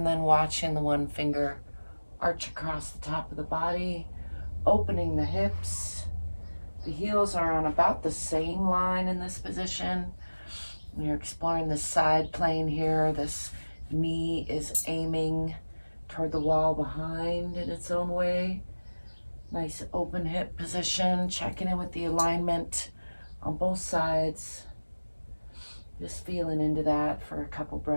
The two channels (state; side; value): inverted; both; correlation -1.00